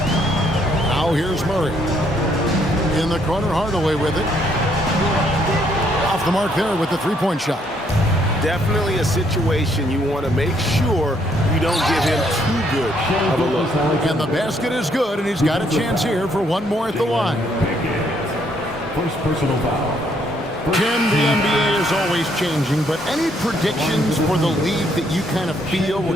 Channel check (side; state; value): both; normal; correlation 0.69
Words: Now here's Murray. In the corner, Hardaway with it. Off the mark there with the three-point shot. Definitely a situation you want to make sure you don't give him too good of a look. And the basket is good, and he's got a chance here for one more at the line. First personal foul. Tim, the NBA is always changing, but any predictions for the league that you kind of feel we're